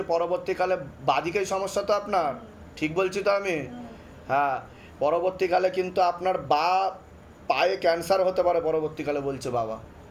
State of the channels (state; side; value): identical; both; correlation 1.00